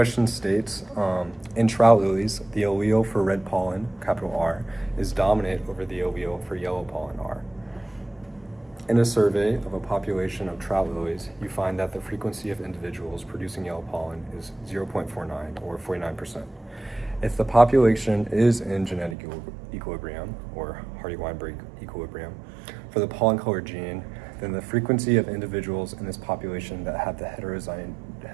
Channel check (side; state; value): left; drops out; at 19.2 s